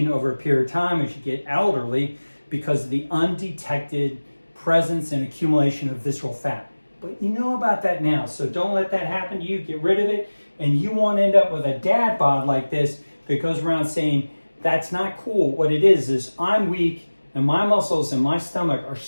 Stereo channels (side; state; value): both; inverted; correlation -1.00